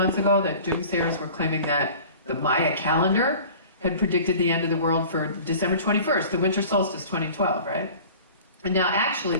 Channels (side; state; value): both; inverted; correlation -0.43